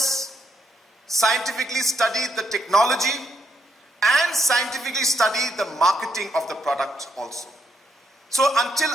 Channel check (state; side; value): normal; both; correlation 0.77